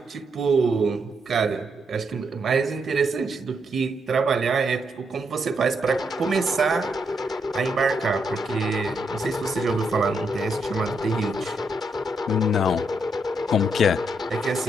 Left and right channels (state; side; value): normal; both; correlation 0.78